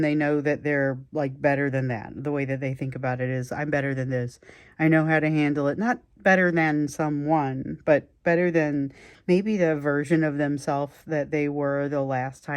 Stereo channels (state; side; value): identical; both; correlation 1.00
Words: they know that they're like better than that. The way that they think about it is, I'm better than this. I know how to handle it. Not better than someone, but better than maybe the version of themselves that they were the last